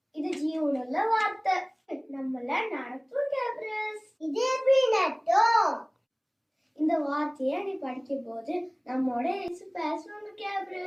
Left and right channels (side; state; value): both; identical; correlation 1.00